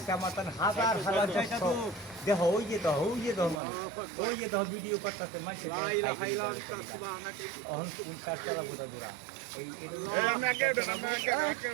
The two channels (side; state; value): left; drops out; at 3.6 s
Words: আমার তান হাজার হাজার দর্শক দেখো ওই যে মানুষ ওই যে ভিডিও করতেছে মানুষ অহন কোনটা চালাবো দাদুরা এই